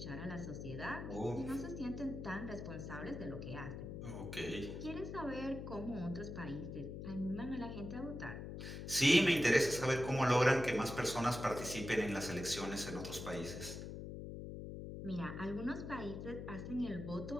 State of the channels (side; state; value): left; noise; hum, 7 dB below the sound